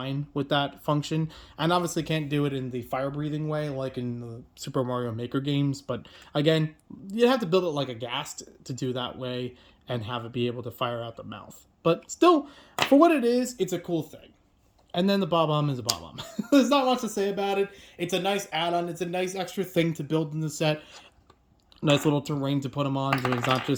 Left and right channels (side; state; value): both; identical; correlation 1.00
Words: with that function. And obviously can't do it in the fire-breathing way like in the Super Mario Maker games. But again, you have to build it like a ghast to do that way and have it be able to fire out the mouth. But still, for what it is, it's a cool thing. And then the Bob-omb is a Bob-omb. There's not much to say about it. It's a nice add-on. It's a nice extra thing to build in the set. Nice little terrain to put him on so he's not